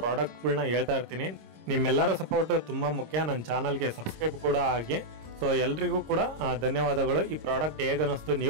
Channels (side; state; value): left; late; 26 ms